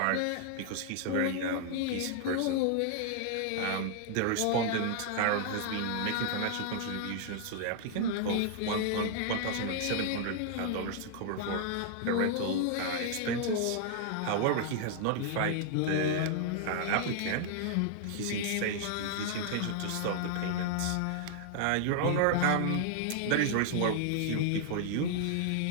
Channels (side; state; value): both; different; correlation -0.01